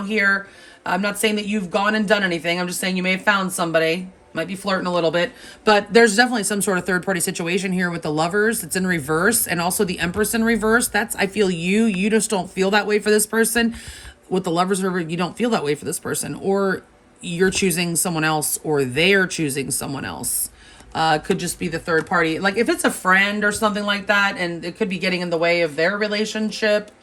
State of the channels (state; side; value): identical; both; correlation 1.00